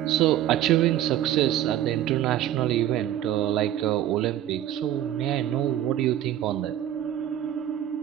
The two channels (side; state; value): left; quieter; 11.7 dB